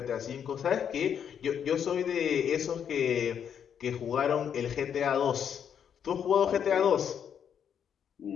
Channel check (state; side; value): quieter; right; 8.3 dB